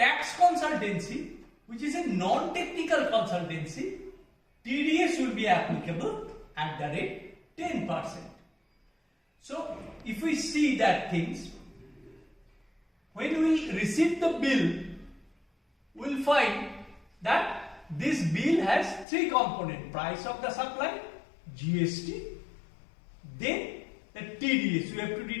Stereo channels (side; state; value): right; drops out; at 19.1 s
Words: consultancy, which is a non-technical consultancy, TDS will be applicable at the rate 10%. So if we see that things, when we receive the bill, we will find that this bill has three components: price of the supply, GST, then the TDS we have to